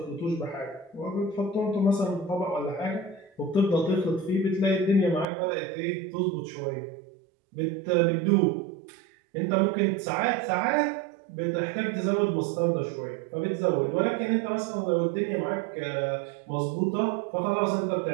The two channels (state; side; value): drops out; left; at 5.2 s